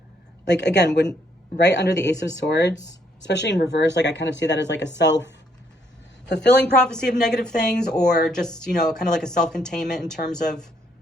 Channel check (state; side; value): normal; both; correlation 0.70